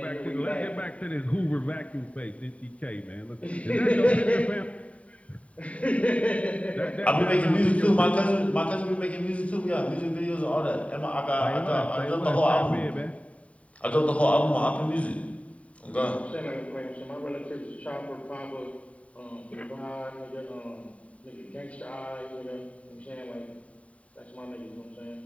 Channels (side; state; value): right; late; 0.066 ms